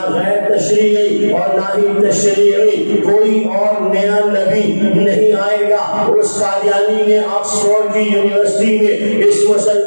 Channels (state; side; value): inverted; both; correlation -1.00